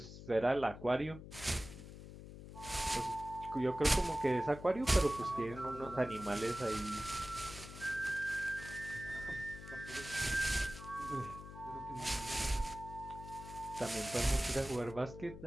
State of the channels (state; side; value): noise; left; hum, 13 dB below the sound